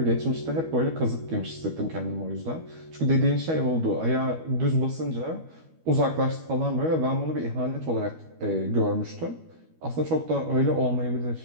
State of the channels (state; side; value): late; left; 12 ms